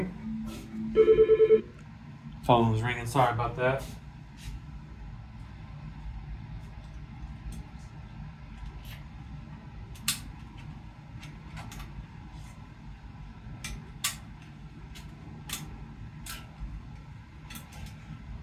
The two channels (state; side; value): identical; both; correlation 1.00